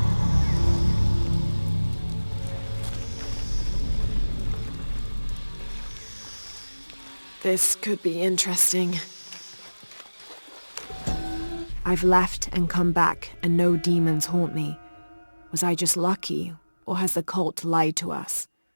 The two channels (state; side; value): inverted; both; correlation -1.00